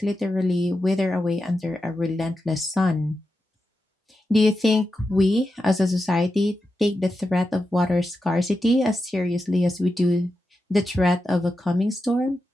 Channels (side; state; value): both; normal; correlation 0.89